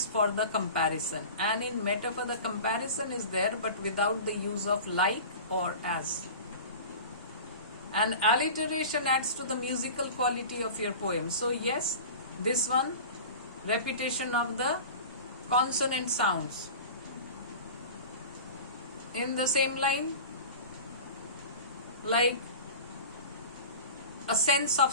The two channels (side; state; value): both; inverted; correlation -0.35